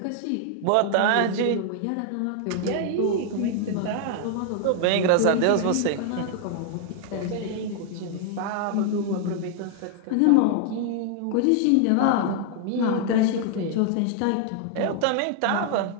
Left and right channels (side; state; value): both; different; correlation 0.00